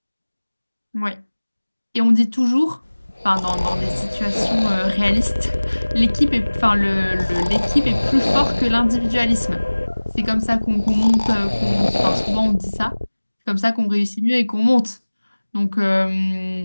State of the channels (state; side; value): inverted; both; correlation -1.00